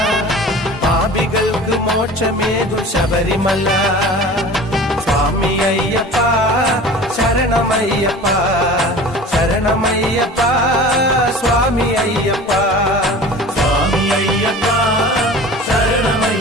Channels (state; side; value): normal; both; correlation 0.39